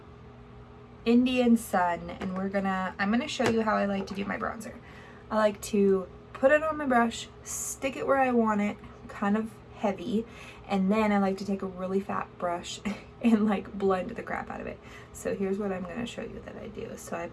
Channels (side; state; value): both; identical; correlation 1.00